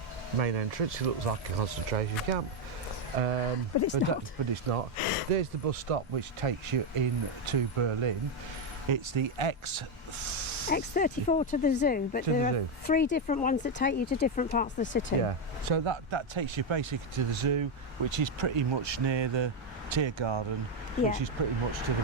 main entrance. It looks like a concentration camp. But it's not. There's the bus stop which takes you into Berlin. It's the X34 to the zoo, but there are 3 different ones that take you to different parts of the city. Yeah, so that takes you basically to the zoo, which is pretty much near the Tiergarten, which is pretty much to the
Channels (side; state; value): both; normal; correlation 0.05